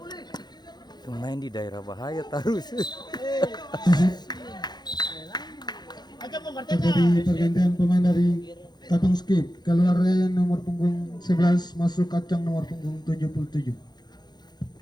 Main di daerah bahaya terus. Terjadi pergantian pemain dari Katong Skip, keluar nomor punggung 11 masuk kacang nomor punggung 77.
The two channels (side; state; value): right; late; 0.20 ms